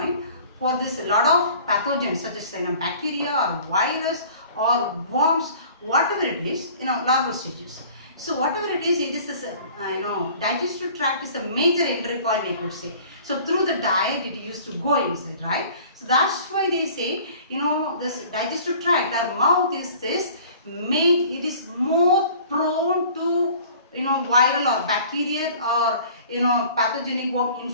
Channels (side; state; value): both; inverted; correlation -0.49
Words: for this lot of pathogens such as bacteria or virus or worms, whatever it is, larval stages. So whatever it is a, digestive tract is a major entry point, I could say. So through the diet it used to go inside, right? So that's why they say, this digestive tract, the mouth is this, it is more prone to, viral or bacterial or, pathogenic worm